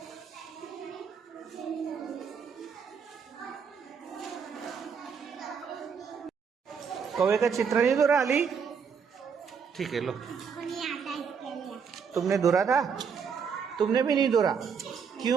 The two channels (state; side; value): quieter; left; 6.4 dB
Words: कौवे का चित्र नहीं दौरा अली? ठीक है, लो। तुमने दौरा था? तुमने भी नहीं दौरा?